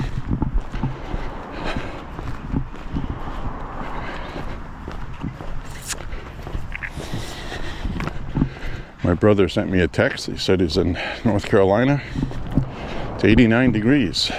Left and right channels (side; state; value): both; identical; correlation 1.00